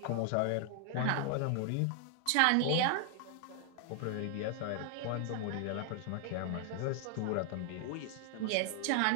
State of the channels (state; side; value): different; both; correlation 0.00